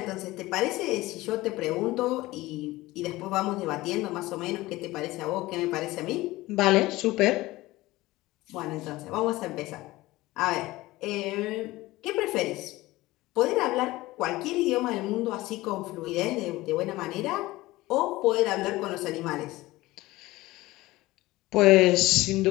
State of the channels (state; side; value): quieter; right; 18.8 dB